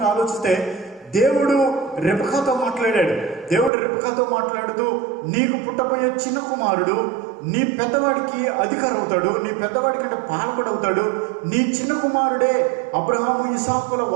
ఆలోచిస్తే దేవుడు రెబెకాతో మాట్లాడాడు. దేవుడు రెబెకాతో మాట్లాడుతూ, నీకు పుట్టబోయే చిన్న కుమారుడు నీ పెద్దవాడికి అధికారం అవుతాడు, నీ పెద్దవాడి కంటే పాల్గొడవుతాడు, నీ చిన్న కుమారుడే అబ్రహాము ఇసాకుల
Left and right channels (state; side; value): drops out; left; at 3.7 s